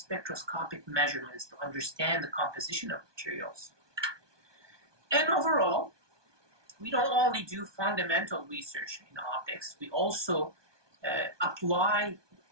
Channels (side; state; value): left; late; 1.2 ms